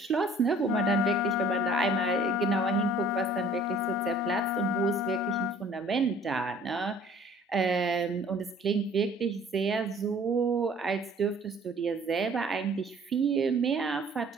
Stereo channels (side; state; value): both; normal; correlation 0.53